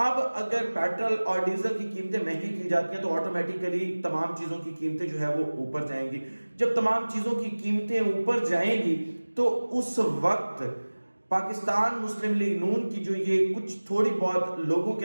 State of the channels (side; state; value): both; inverted; correlation -1.00